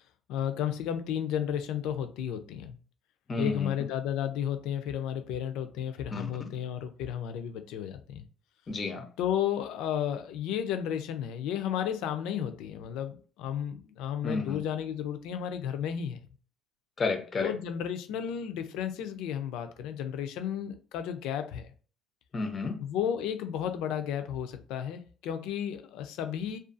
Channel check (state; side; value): quieter; right; 8.0 dB